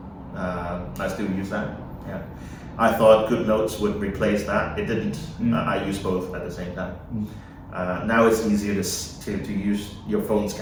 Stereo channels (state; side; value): identical; both; correlation 1.00